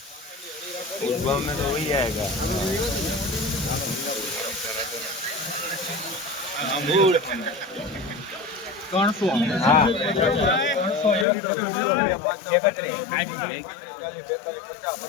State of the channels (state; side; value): drops out; right; at 11.2 s